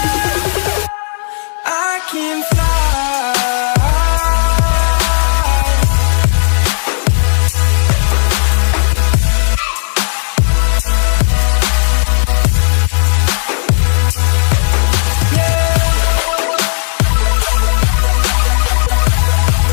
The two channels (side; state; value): right; silent; 69 dB below the other